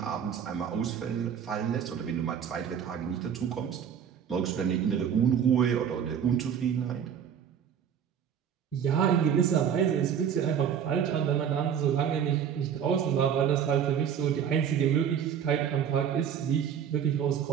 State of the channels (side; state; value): left; quieter; 8.3 dB